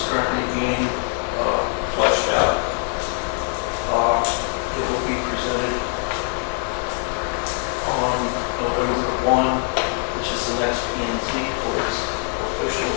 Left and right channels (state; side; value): quieter; right; 39.8 dB